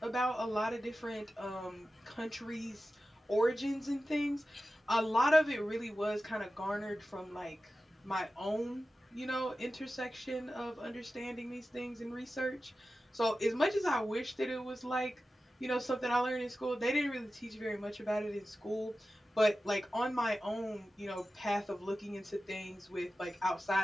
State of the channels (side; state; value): both; normal; correlation 0.94